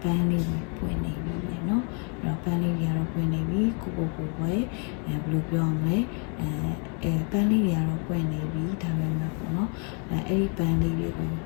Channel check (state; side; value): quieter; right; 39.2 dB